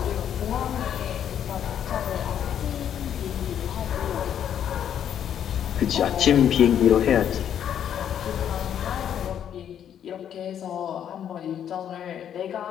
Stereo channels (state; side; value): quieter; right; 9.5 dB